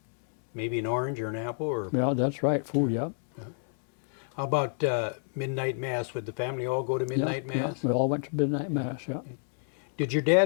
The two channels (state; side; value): silent; right; 59 dB below the other